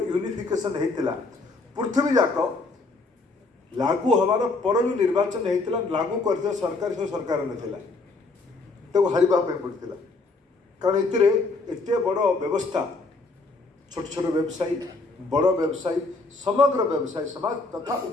होता पृथ्वी जाक लागू हमार पर जो निर्वाचन होता लागू कर सरकार से सरकार नाला तो हारवाई पड़ता कारण एत बड़ व्यवस्था छोट छोट व्यवसायी बड़ व्यवसायी समग्र व्यवसायी समाज तथा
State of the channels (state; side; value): quieter; right; 3.6 dB